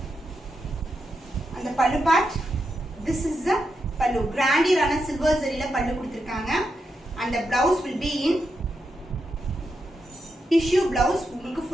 அந்த பல்லு part, this is the pallu, grandier silver zarila pallu kuduthirukanga and the blouse will be in tissue blouse. உங்களுக்கு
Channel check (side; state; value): both; normal; correlation 0.85